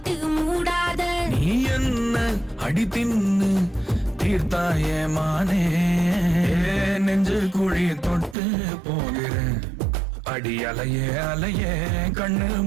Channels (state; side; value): drops out; left; at 8.3 s